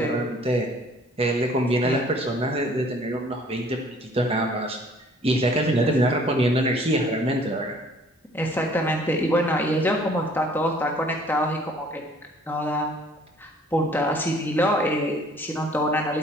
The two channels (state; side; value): normal; both; correlation 0.56